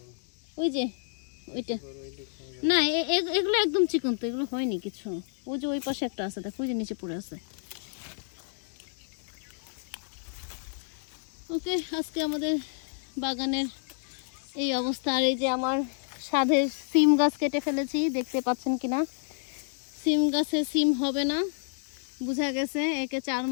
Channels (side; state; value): right; silent; digital silence